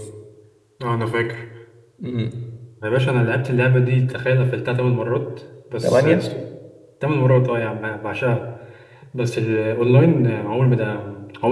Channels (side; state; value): both; identical; correlation 1.00